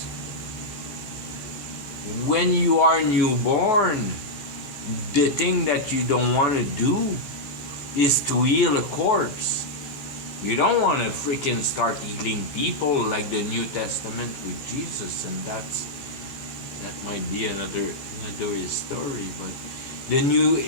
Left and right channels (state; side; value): late; right; 15 ms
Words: when you are newborn, the thing that you don't want to do is to heal a corpse. You don't want to freaking start healing people like the New Testament with Jesus, and that might be another story. But the